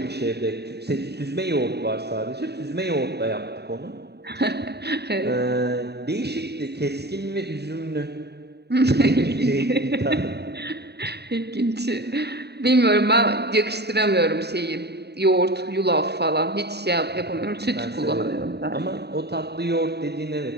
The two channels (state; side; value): late; left; 0.48 ms